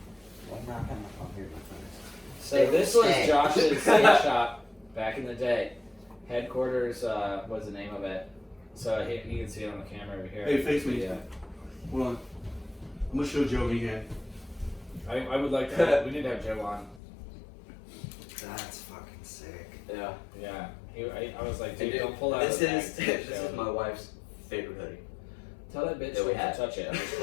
I'm not gonna come here, my friends. So Stay- this was stay. Josh's skate shop back in the day. Headquarters was the name of it. So you can see it on the camera over here. Hey, face me. Yeah. Hold on. I'm gonna show Joe Meehan. I would like to. We need to have Joe on. That's fucking sick. Yeah. Yeah. I was like, And dude, don't pull out this the is bag. this is my wife's favorite hoodie. Tell that bitch that we to had. touch it. I'm just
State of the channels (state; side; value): drops out; right; at 17.0 s